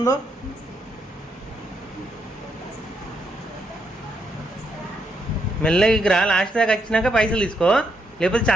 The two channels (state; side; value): normal; both; correlation 0.78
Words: మెల్లగా రా, లాస్ట్ దాకా వచ్చినాక పైసలు తీసుకో, లేకపోతే